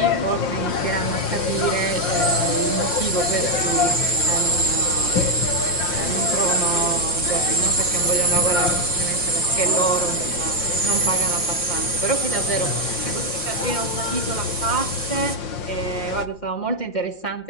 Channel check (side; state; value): right; late; 5.7 ms